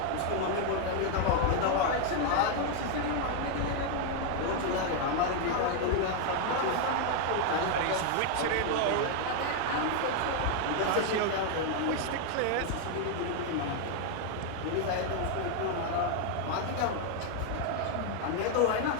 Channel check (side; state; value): both; different; correlation 0.00